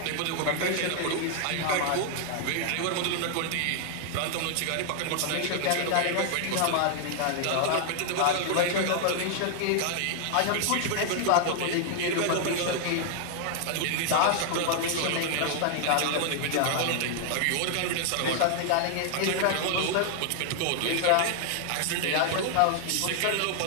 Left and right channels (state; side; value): different; both; correlation 0.00